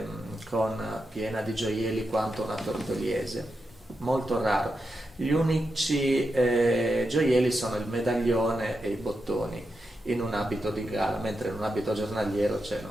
piena di gioielli quanto una tortoliese, molto raro. Gli unici gioielli sono il medaglione e i bottoni in un abito di gala, mentre in un abito giornaliero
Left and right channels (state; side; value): normal; both; correlation 0.87